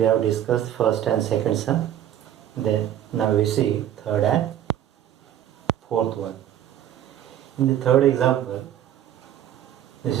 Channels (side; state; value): left; quieter; 11.1 dB